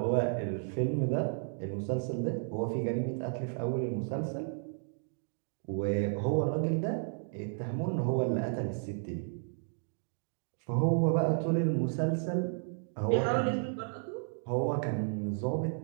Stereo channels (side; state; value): left; silent; 56 dB below the other